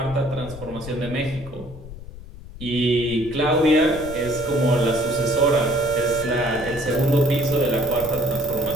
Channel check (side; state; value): left; noise; rumble, 14 dB below the sound